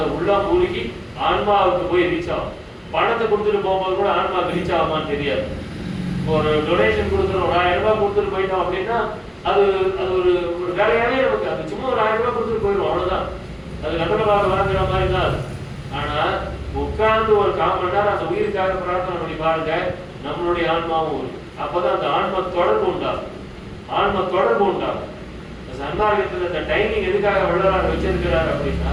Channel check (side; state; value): both; identical; correlation 1.00